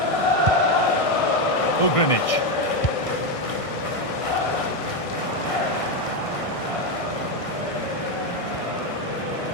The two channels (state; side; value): late; right; 1.6 ms